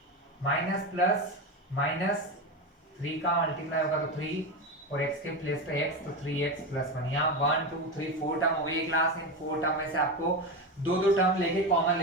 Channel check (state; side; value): normal; both; correlation 0.18